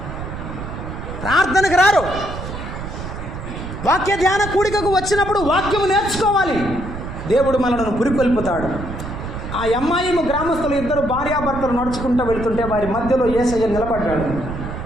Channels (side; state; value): right; noise; rumble, 8 dB below the sound